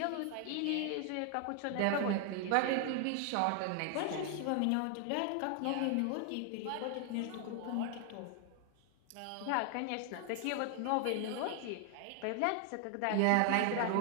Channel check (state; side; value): different; both; correlation 0.00